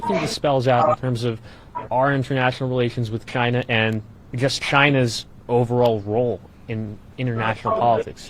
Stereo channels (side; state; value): both; identical; correlation 1.00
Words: think this spells out in terms of our international relations with China and just China's overall role in international politics?